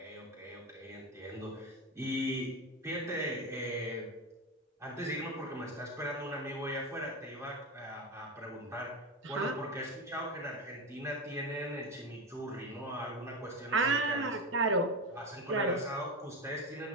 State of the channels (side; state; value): both; normal; correlation 0.18